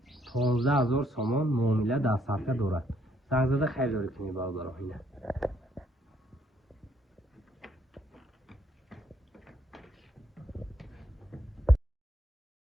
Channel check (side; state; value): both; normal; correlation 0.70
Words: 15000 سومان معامله دستافکه دارد. زنگ زده خیلی داری کنی برادرو. اینه